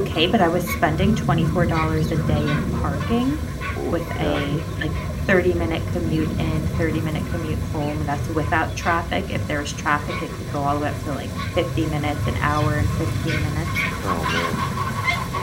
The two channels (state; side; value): identical; both; correlation 1.00